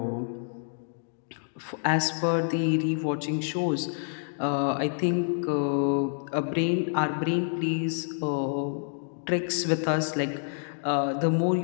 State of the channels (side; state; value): right; silent; digital silence